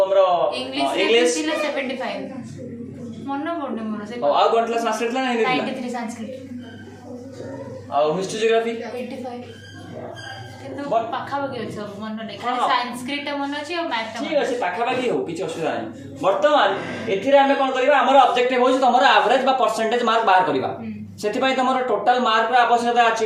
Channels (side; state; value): both; identical; correlation 1.00